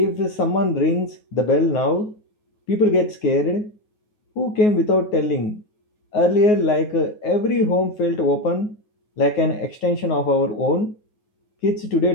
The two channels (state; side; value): late; right; 9.5 ms